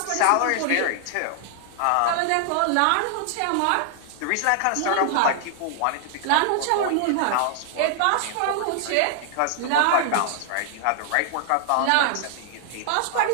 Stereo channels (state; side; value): different; both; correlation 0.00